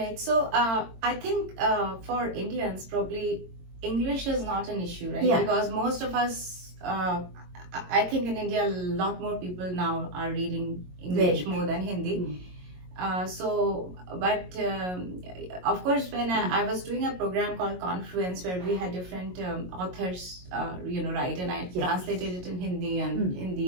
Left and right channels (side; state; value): left; late; 22 ms